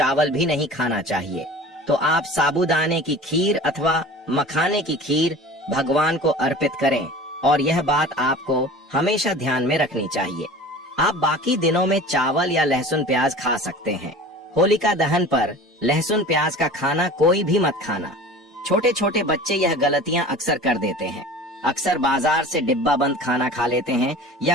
भी नहीं खाना चाहिए। तो आप साबूदाने की खीर अथवा मखाने की खीर भगवान को अर्पित करें, और यह बात आपको हमेशा ध्यान में रखनी चाहिए। आप बाकी दिनों में चावल या लहसुन प्याज खा सकते हैं। होलिका दहन पर लहसुन प्याज का खाना कोई भी मत खाना। छोटे छोटे बच्चे यह गलतियां अक्सर कर देते हैं। अक्सर बाजार से डिब्बा बंद खाना खा लेते हैं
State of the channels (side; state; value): both; normal; correlation 0.39